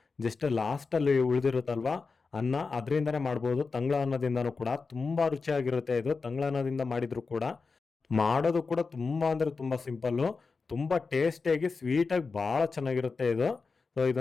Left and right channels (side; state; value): right; quieter; 4.5 dB